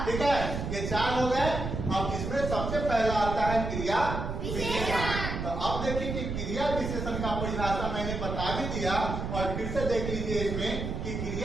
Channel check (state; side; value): noise; right; rumble, 4 dB below the sound